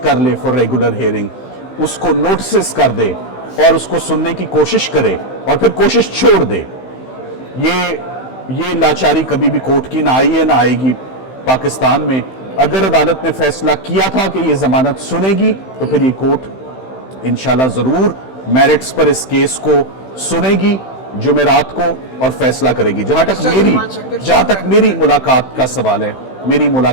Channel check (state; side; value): late; right; 15 ms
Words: ले फॉर रेगुलर हेयरिंग, उसको नोटिस कर दे और उसको सुनने की कोशिश करे और फिर कोशिश छोड़ दे, ये लाचारी कभी भी कोर्ट की ना आई है ना आएगी पाकिस्तान में। अगर अदालत ने फैसला किया था कि ये जमानत सुनेगी तो फिर ये कोर्ट इंशाल्लाह जरूर मेरिट्स पर इस केस को सुनेगी जुमेरात को और फैसला करेगी। जहां तक मेरी मुलाकात का सवाल है,